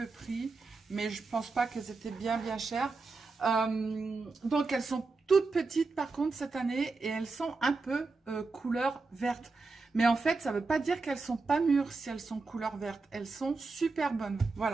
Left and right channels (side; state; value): left; quieter; 3.9 dB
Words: prix, mais je pense pas qu'elles étaient bien chères. Donc, elles sont toutes petites par contre cette année et elles sont un peu couleur verte. Mais en fait, ça veut pas dire qu'elles sont pas mûres si elles sont couleur verte. Elles sont super bonnes,